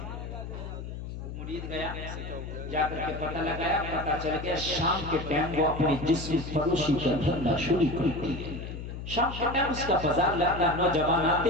مرید گیا، جا کر کے پتہ لگایا، پتہ چل گیا شام کے ٹائم وہ اپنی جسم فروشی کا دھندا شروع کرتی ہے۔ شام کے ٹائم اس کا بازار لگتا ہے، نوجوان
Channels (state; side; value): noise; left; hum, 8 dB below the sound